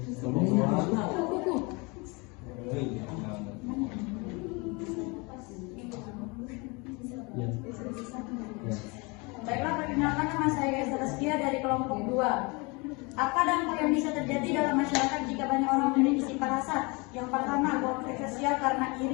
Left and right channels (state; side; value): quieter; right; 28.1 dB